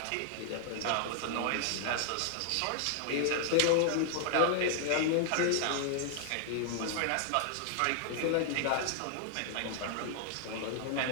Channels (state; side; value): different; both; correlation -0.01